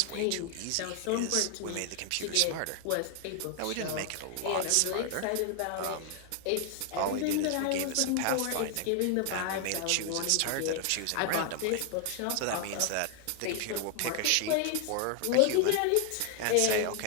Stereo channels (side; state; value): both; different; correlation 0.00